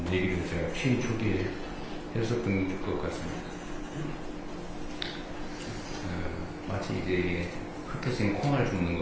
얘기를 제가 취임 초기에 했었던 것 같습니다. 마치 이제 흩어진 콩알 줍는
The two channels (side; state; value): both; identical; correlation 1.00